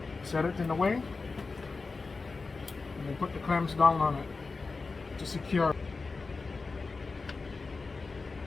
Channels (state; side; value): quieter; right; 4.1 dB